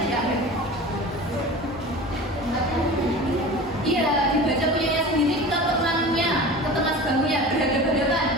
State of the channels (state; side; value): normal; both; correlation 0.35